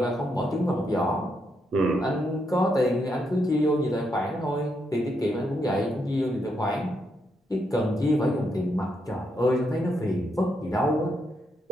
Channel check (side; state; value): both; normal; correlation 0.79